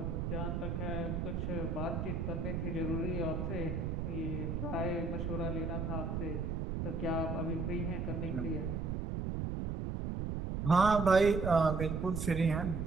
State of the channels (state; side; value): noise; right; rumble, 2 dB below the sound